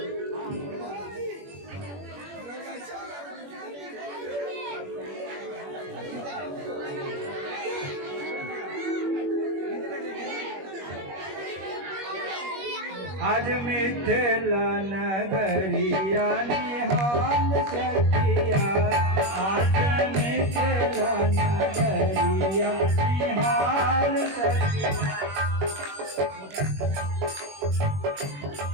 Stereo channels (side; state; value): left; late; 21 ms